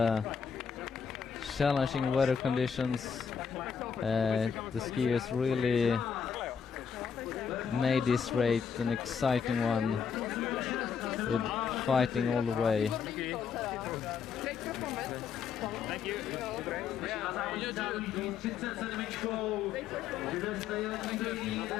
challenging weather conditions, the skiers really made this race an exciting one, with fighting all the way.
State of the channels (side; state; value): right; quieter; 6.8 dB